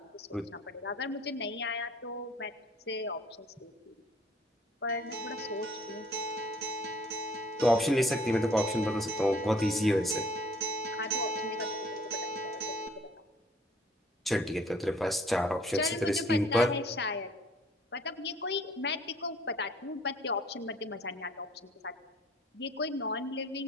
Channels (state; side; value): normal; both; correlation 0.57